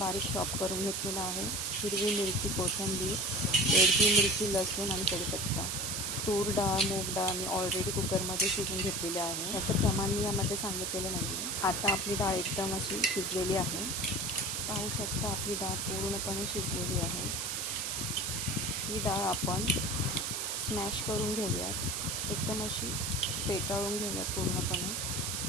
चॉप करून घेतलेला आहे, हिरवी मिरची, कोथिंबीर, बेडगी मिरची, लसूण आणि कढीपत्ता. तूर डाळ, मूग डाळ मी ऑलरेडी कुकरमध्ये शिजवून घेतलेली आहे. याचं प्रमाण मी यामध्ये सांगितलेलं नाही आहे. आता आपली डाळ एकदम अशी शिजलेली आहे. पाहू शकता आपली डाळ पूर्णपणे शिजलेली आहे. ही डाळ आपण स्मॅश करून घेऊयात, एकदम अशी फेटाळून घेऊयात पूर्णपणे,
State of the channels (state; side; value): noise; right; hiss, 1 dB below the sound